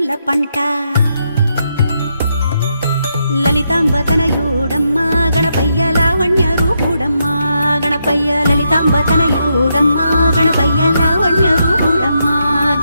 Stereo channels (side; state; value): both; inverted; correlation -0.81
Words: పంట లలితాంబ తనయుడమ్మ గణపయ్య లావణ్య రూపుడమ్మ గణపయ్య లలితాంబ తనయుడమ్మ గణపయ్య లావణ్య రూపుడమ్మ